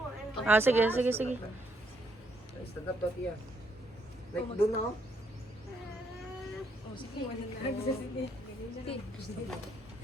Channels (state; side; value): normal; both; correlation 0.74